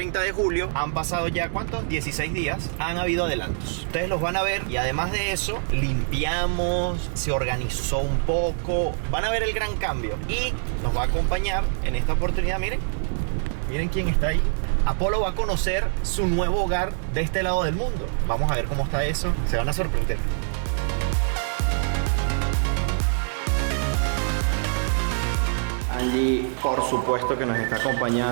de julio, han pasado ya, ¿cuántos? 16 días. Han habido adelantos. Ustedes los van a ver y además de eso, limpiamos, se organizó un poco. Van a ver el gran cambio y nos va a acompañar en esta oportunidad, miren quién está ahí. Apolo va a conocer su nuevo hogar de este lado del mundo. Vamos a ver cómo está eso. Se van a sorprender. Angie, por supuesto que nos está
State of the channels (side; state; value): left; silent; 62 dB below the other